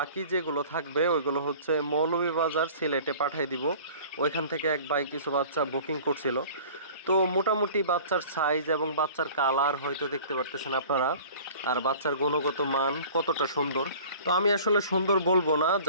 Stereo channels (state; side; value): inverted; both; correlation -0.45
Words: যেগুলো থাকবে ওইগুলো হচ্ছে মৌলভীবাজার সিলেটে পাঠিয়ে দিব। ওইখান থেকে এক ভাই কিছু বাচ্চা বুকিং করছিল। তো মোটামুটি বাচ্চার সাইজ এবং বাচ্চার কালার হয়তো দেখতে পারতেছেন আপনারা, আর বাচ্চার গুণগত মান কতটা সুন্দর। তো আমি আসলে সুন্দর বলবো না,